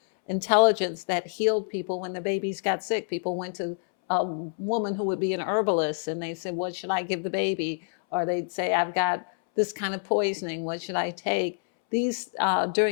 intelligence that healed people when the babies got sick. People went to a woman who would be an herbalist, and they said, what should I give the baby? Or they'd say, I've got this kind of poisoning, what should I take? These,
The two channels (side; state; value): right; silent; 60 dB below the other